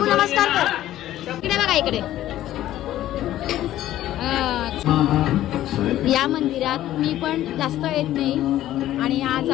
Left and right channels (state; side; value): quieter; right; 13.6 dB